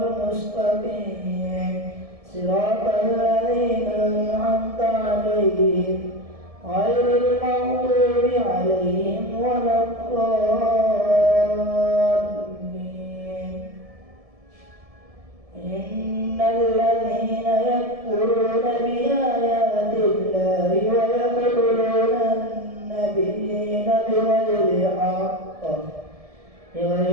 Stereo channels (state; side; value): late; left; 1.7 ms